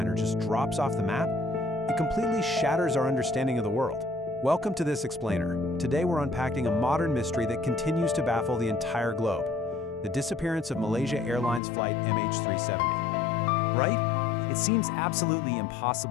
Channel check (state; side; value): drops out; right; at 11.6 s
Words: just drops off the map, it completely shatters our understanding of the world. Welcome to This Explainer. Today we're unpacking a modern mystery that continues to baffle the entire globe. The disappearance of Malaysia Airlines Flight MH370. Right? It seems absolutely